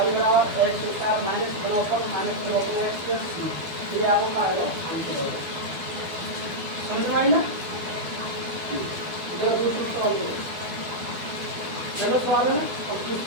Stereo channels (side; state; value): left; late; 12 ms